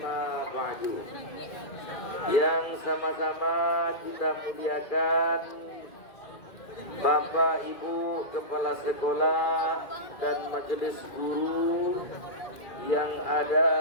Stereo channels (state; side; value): late; right; 2.0 ms